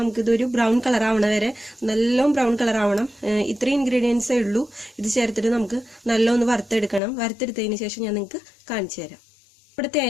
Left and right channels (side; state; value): right; drops out; at 7.0 s